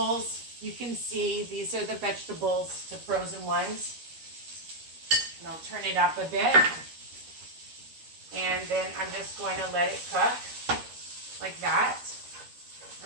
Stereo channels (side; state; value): left; late; 13 ms